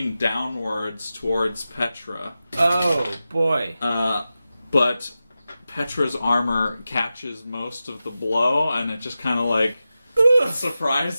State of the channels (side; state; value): both; inverted; correlation -0.93